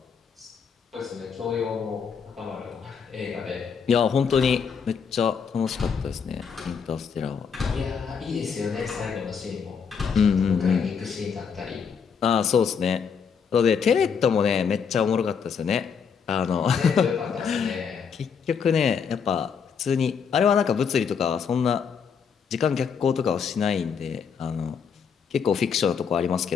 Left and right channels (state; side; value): quieter; right; 6.5 dB